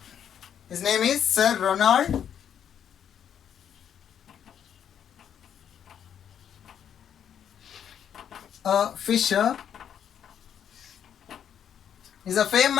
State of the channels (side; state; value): right; quieter; 9.0 dB